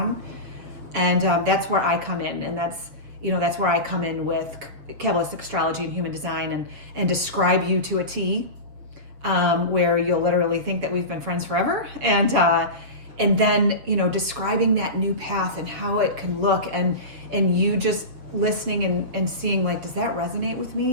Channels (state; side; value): late; left; 7.4 ms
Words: And that's where I come in. And that's where I come in with Kabbalistic astrology and human design, and describe you to a T, where you'll literally think that we've been friends forever. And then, describing that new path and how it can look, and you just listening and seeing, like, does that resonate with